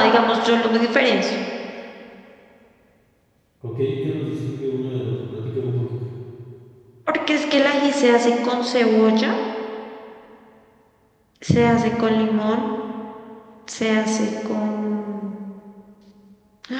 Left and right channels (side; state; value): both; identical; correlation 1.00